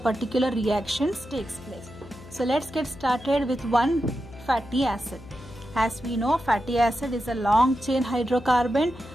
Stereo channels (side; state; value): left; noise; hum, 18 dB below the sound